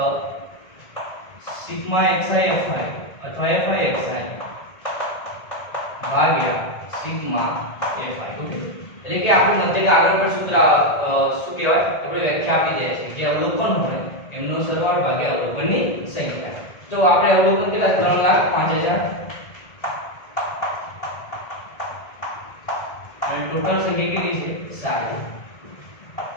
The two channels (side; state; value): right; late; 1.7 ms